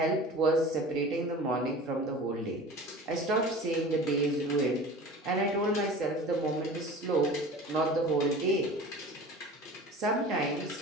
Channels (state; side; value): normal; both; correlation 0.38